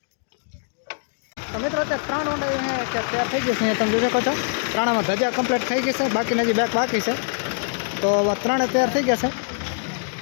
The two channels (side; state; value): right; silent; 59 dB below the other